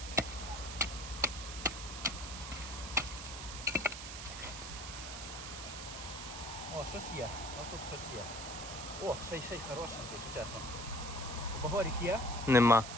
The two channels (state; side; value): noise; right; hiss, 8 dB below the sound